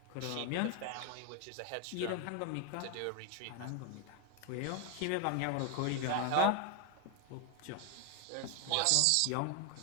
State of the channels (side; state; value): both; different; correlation 0.01